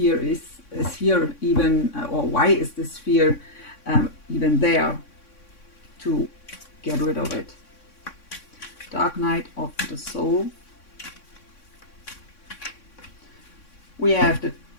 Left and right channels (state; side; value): late; right; 3.6 ms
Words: is here even, or why is this fear even there, to get rid of it. Dark night of the soul. We have the